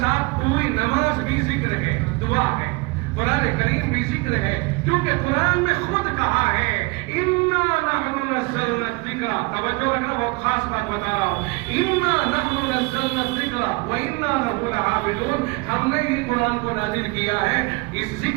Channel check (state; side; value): quieter; left; 26.6 dB